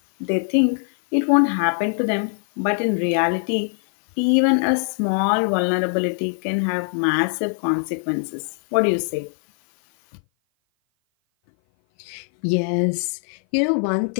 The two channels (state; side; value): silent; right; 57 dB below the other